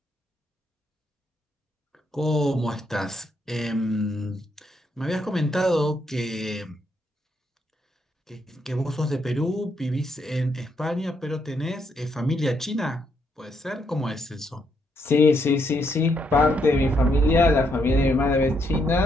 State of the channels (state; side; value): normal; both; correlation 0.76